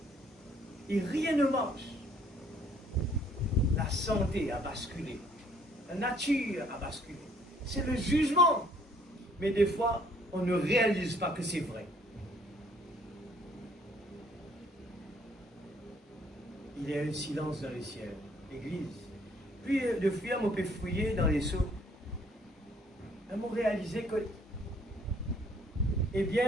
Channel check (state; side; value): normal; both; correlation 0.62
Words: Et rien ne marche. La santé a basculé. La nature a basculé. C'est le jugement. Mais des fois, on ne réalise pas que c'est vrai. Il y a un silence dans les ciels. L'église. Puis, de fouiller, on peut fouiller dans les seaux. On a réalisé que, eh